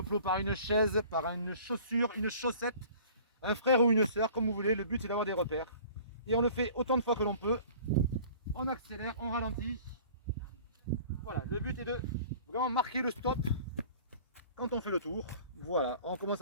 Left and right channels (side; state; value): both; inverted; correlation -0.48